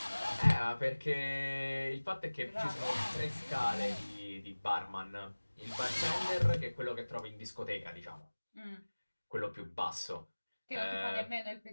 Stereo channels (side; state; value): both; inverted; correlation -1.00